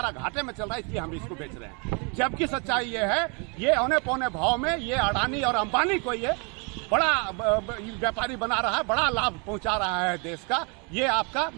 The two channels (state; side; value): quieter; left; 34.0 dB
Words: घाटे में चल रहा है, इसलिए हम इसको बेच रहे हैं। जबकि सच्चाई ये है, ये औने पौने भाव में ये अडानी और अंबानी को ये बड़ा व्यापारी बना रहा है, बड़ा लाभ पहुंचा रहा है देश का। ये आपका